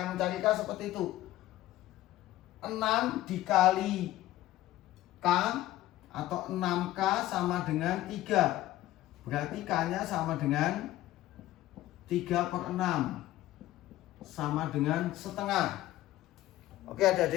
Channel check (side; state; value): right; quieter; 15.3 dB